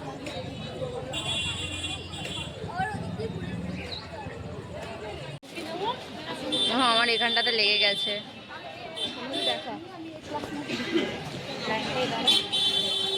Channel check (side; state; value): both; identical; correlation 1.00